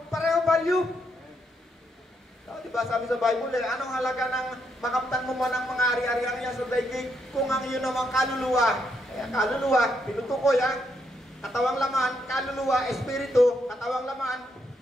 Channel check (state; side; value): normal; both; correlation 0.77